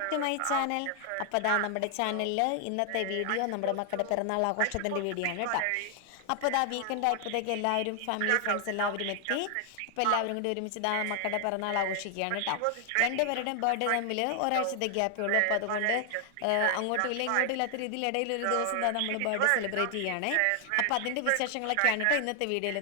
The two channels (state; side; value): different; both; correlation 0.00